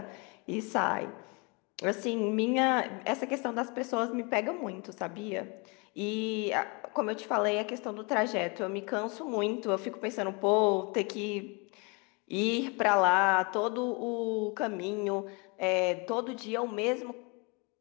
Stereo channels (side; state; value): right; quieter; 30.6 dB